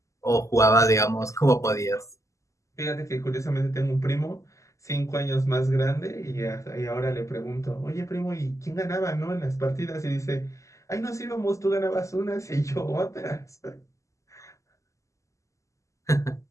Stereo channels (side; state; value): right; late; 0.16 ms